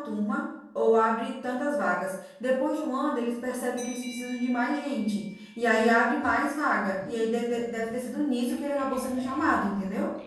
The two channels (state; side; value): identical; both; correlation 1.00